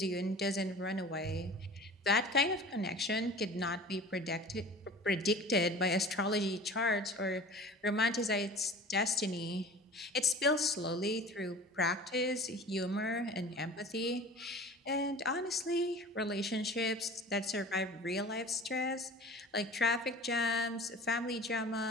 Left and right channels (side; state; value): both; normal; correlation 0.41